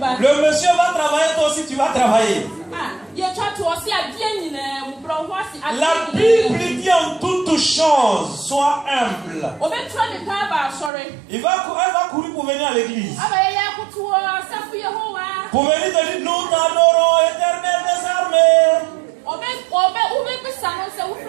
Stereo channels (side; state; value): left; drops out; at 10.9 s